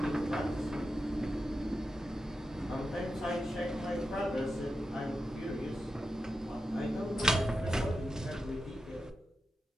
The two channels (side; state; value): both; normal; correlation 0.90